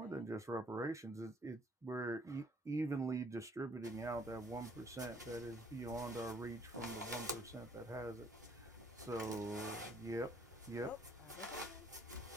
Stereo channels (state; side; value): normal; both; correlation 0.63